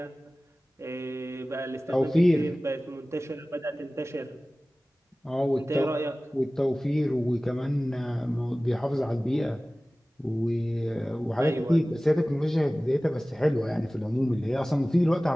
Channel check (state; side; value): normal; both; correlation 0.98